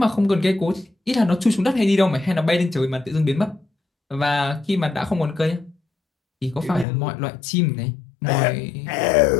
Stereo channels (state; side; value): drops out; right; at 6.9 s